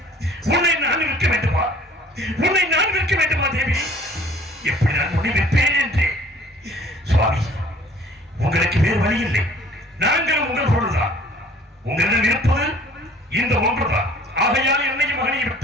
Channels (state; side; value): normal; both; correlation 0.52